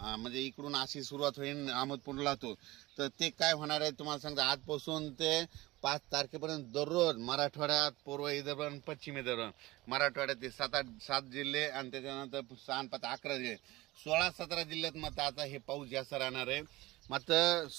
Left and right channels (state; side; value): quieter; left; 19.7 dB